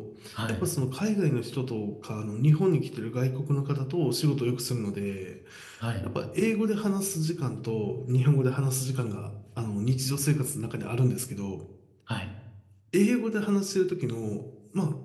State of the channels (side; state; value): both; identical; correlation 1.00